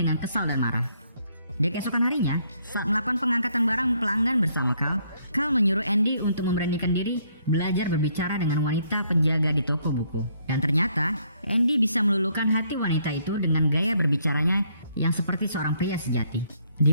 kesal dan marah. Di keesokan harinya, saat melakukan pengangkatan barang pelanggan bersama Carl menyuruh Andy untuk memberanikan diri belajar berbicara dengan wanita penjaga di toko buku. Dan ternyata, Andy bisa meluluhkan hati wanita itu dengan gaya berbicaranya yang seperti seorang pria sejati. Di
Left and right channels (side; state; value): both; inverted; correlation -0.69